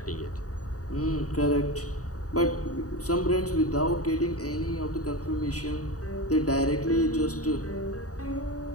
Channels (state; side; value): late; right; 0.66 ms